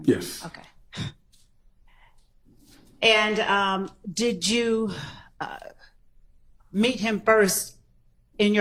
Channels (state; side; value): identical; both; correlation 1.00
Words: Yes. in? Okay. And did you meet him first in